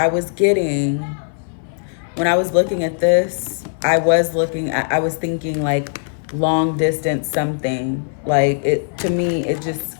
was getting, when I was looking at this, I was thinking like long distance something. Like, it, to me, it just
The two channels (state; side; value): silent; right; 59 dB below the other